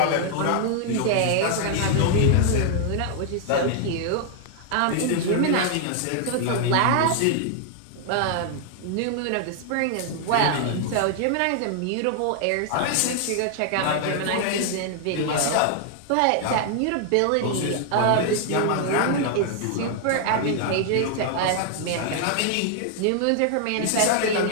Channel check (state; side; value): different; both; correlation 0.00